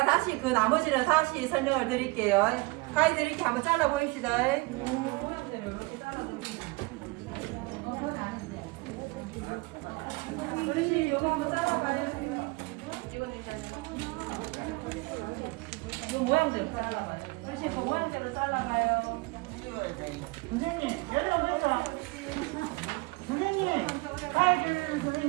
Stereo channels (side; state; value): left; quieter; 24.8 dB